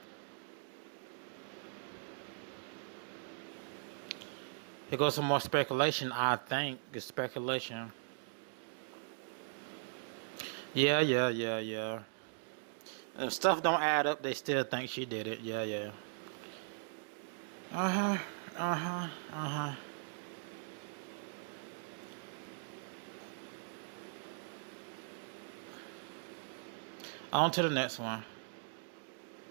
Here goes some more speculation, I think. It's speculation. Yeah. And stuff don't add up, they still think she did it. Yeah. On to the next one.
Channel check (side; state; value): left; silent; digital silence